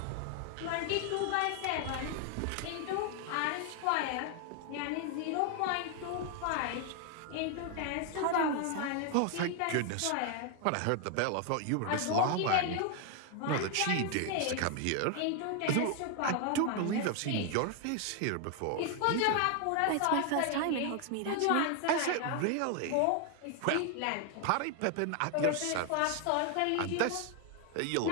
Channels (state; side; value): different; both; correlation 0.00